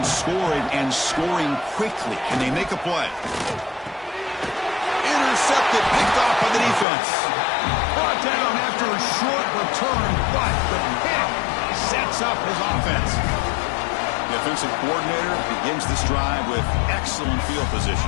scoring and scoring quickly. Can they make a play? Intercepted, picked off by the defense. Brought down after a short return, but the pick sets up his offense. The offensive coordinator begins this drive with excellent field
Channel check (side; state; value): right; drops out; at 6.9 s